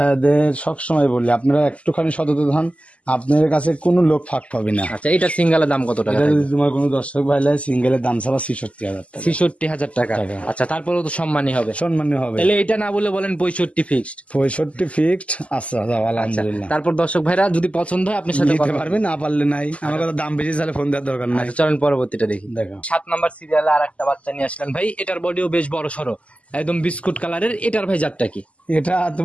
সবসময় বলি আপনারা একটুখানি সততা হন, আপনাদের কাছে কোনো লোক ফাঁক পাবে না। আচ্ছা এটা সিঙ্গেলের দাম কত টাকা? যদি তোমার কোনো দর্শক ভাই লাই, সিঙ্গেলের দাম ছাড়া 66,000 টাকা। 66,000 টাকা। আচ্ছা তারপরেও তো সম্মানী হবে। সম্মানী হবে। তাহলে এটা না বলে বলেন 65 ফিক্সড। 65 ফিক্সড। আচ্ছা আলহামদুলিল্লাহ। তারপর দর্শক ভাইরা যদি পছন্দ হয় আপনার সাথে নিতে পারবে, না পারলে নাই। আমার কথা দাম বেশি চাইলে ফোন দেওয়ার দরকার নাই। চলেন পরবর্তীটা দেখি। দেখো 7 নাম্বার সিরিয়ালে আর একটা বাচ্চা নিয়ে আসলেন ভাই। এটার বডিও বেশ বড় সড়ো, একদম বিস্কুট কালারের। এটার ভাই জাতটা কি? এটা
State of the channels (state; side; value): late; right; 0.064 ms